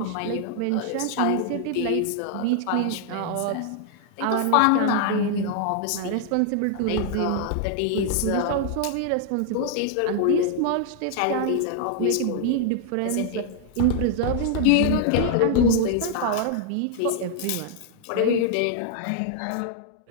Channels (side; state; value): both; different; correlation 0.00